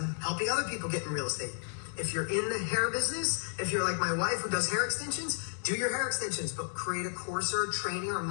helping other people get in real estate. If you're in the hair business, if you're like my wife who does hair extensions, do your hair extensions, but create a course or a training or a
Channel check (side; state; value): right; silent; digital silence